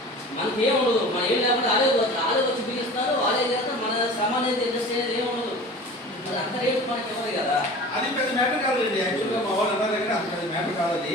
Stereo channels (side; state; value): both; normal; correlation 0.39